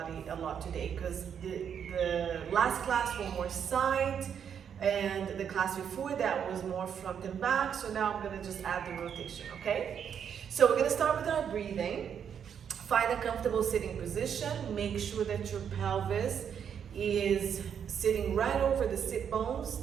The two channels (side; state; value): left; quieter; 8.0 dB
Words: a lot today because the last class was more side and the class before that was more front and back, so now I'm going to just add the rotation, okay? So we're going to start with our breathing. Find a comfortable sitting position. Make sure that your pelvis is sitting right over the sit bones,